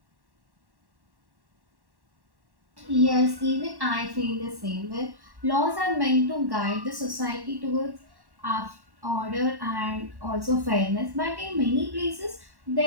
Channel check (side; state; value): left; late; 1.1 ms